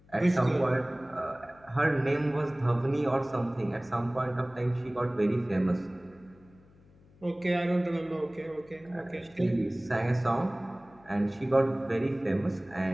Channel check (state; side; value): noise; left; hum, 28 dB below the sound